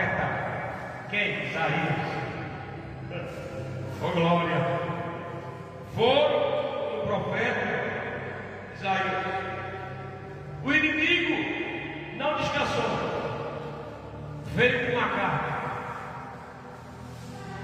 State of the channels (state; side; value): identical; both; correlation 1.00